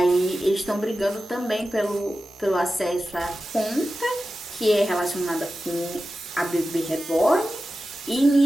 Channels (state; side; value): normal; both; correlation 0.93